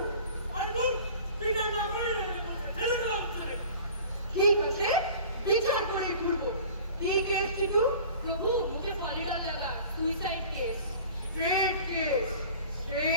আরে বল তুই না না করে ছেড়ে দাও তুমি। ঠিক আছে বিচার করে ঘুরবো। কি কেস চিটু? প্রভু মুখে পলিডা লাগা, suicide case. Straight case,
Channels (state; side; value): inverted; both; correlation -0.44